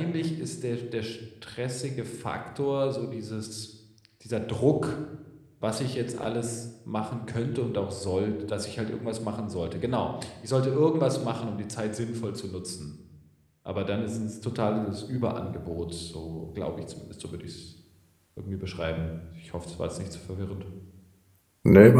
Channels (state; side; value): identical; both; correlation 1.00